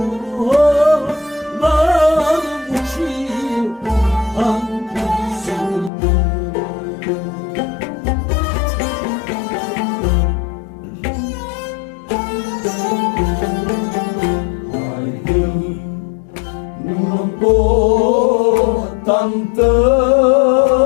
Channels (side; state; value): right; drops out; at 5.9 s